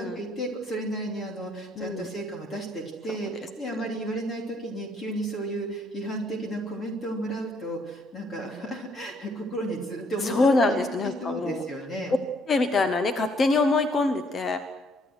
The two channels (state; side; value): normal; both; correlation 0.66